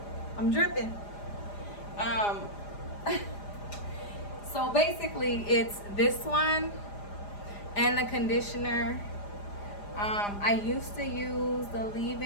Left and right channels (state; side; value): late; right; 4.9 ms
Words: I'm dripping. So basically it's this one and the conditioner. I used to use the